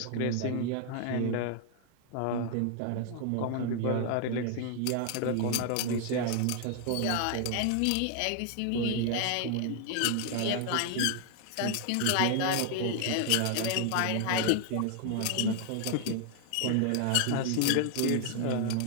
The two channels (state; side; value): different; both; correlation 0.00